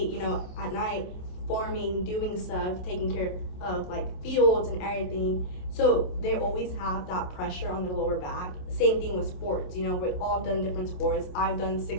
you know, at night, farming, doing stuff, taking care of like fields and everything. So they always have that pressure on their lower back. Same thing with sports, you know, we've all done different sports. I've done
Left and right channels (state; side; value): late; right; 27 ms